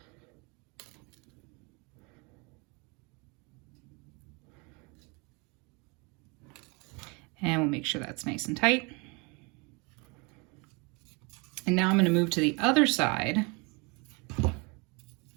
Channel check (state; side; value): quieter; left; 29.9 dB